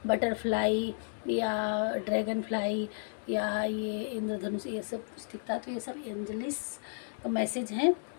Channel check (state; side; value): silent; right; digital silence